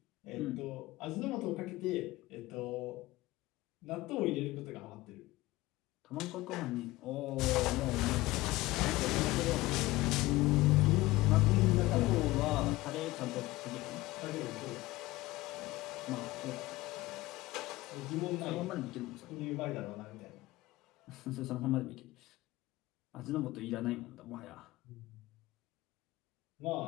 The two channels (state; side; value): quieter; right; 19.0 dB